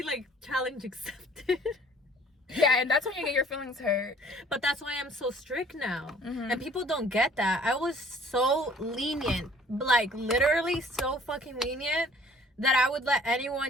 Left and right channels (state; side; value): normal; both; correlation 0.54